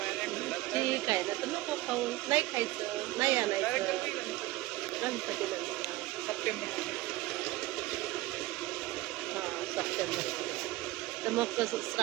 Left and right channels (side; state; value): left; quieter; 18.2 dB